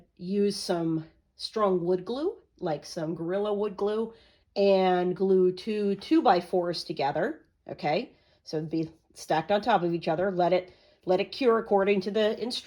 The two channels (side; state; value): both; identical; correlation 1.00